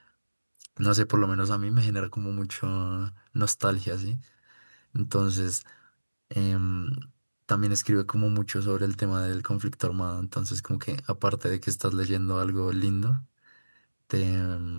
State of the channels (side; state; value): both; inverted; correlation -1.00